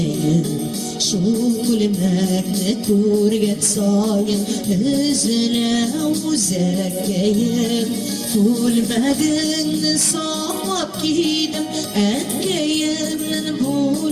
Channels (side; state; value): both; identical; correlation 1.00